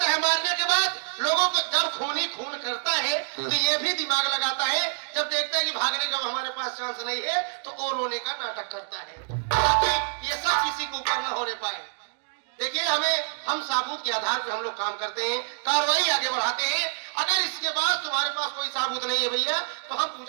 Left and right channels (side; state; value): left; silent; 60 dB below the other